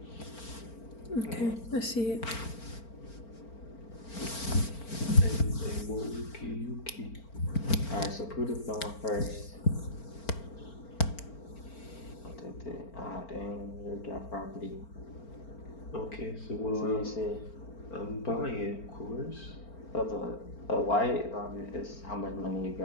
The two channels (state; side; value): late; right; 4.4 ms